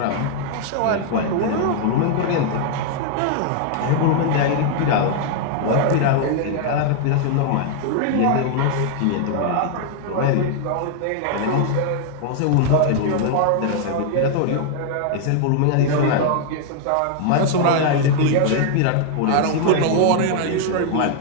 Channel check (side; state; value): both; different; correlation 0.00